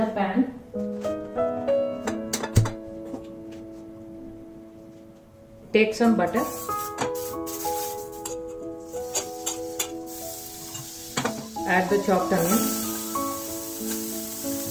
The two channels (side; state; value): both; identical; correlation 1.00